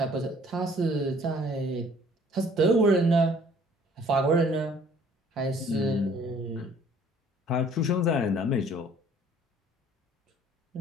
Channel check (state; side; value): normal; both; correlation 0.56